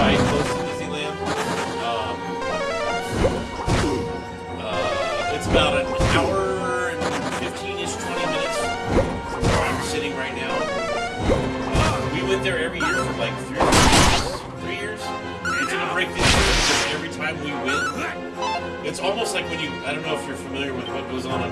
close to Disneyland. It's about an hour and 15-ish, 20 minutes from where I'm sitting right now. We went there every year for like 3 years. We took a break this year because every time we went, it's almost like when you, I don't know if you're familiar with what goes on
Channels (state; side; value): identical; both; correlation 1.00